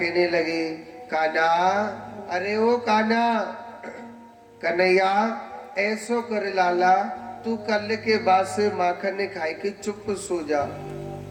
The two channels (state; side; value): identical; both; correlation 1.00